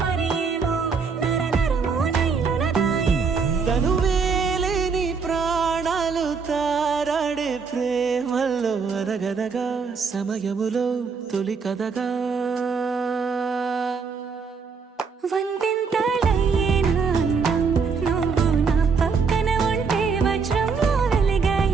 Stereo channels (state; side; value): quieter; left; 5.4 dB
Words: మరేమో నరనరమో నైలునదాయే తను వేలేని ప్రాణాలు తారాడే ప్రేమల్లో అనగనగా సమయములో తొలి కథగా వందెంతలయ్యేనా అందం నువ్వు నా పక్కన ఉంటే వజ్రంలో వెలిగా